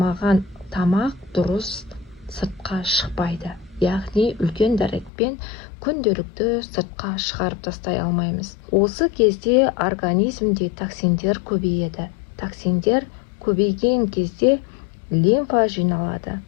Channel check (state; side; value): drops out; right; at 5.1 s